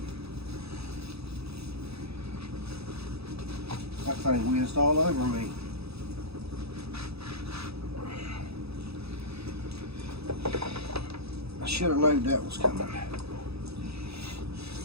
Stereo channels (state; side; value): late; left; 0.78 ms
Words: That thing whizzed all over me. I should have known that was coming.